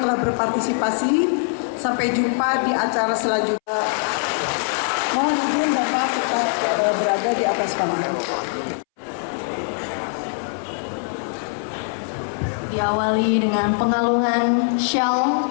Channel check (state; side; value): silent; right; 64 dB below the other